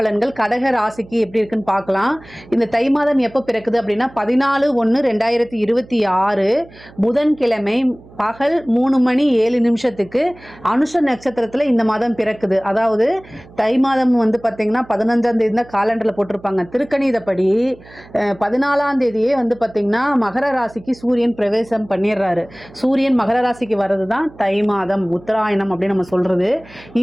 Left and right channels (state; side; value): noise; right; hum, 23 dB below the sound